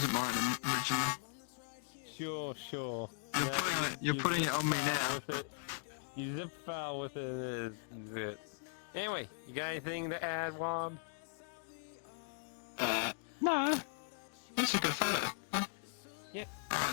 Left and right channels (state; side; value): silent; right; digital silence